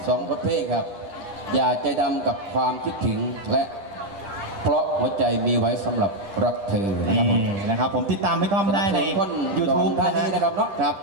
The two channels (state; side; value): late; left; 10 ms